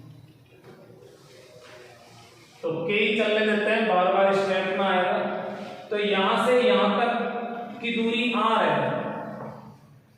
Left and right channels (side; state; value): both; identical; correlation 1.00